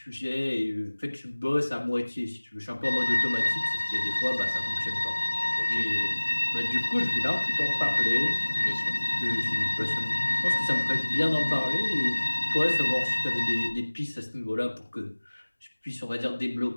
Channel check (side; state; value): both; inverted; correlation -1.00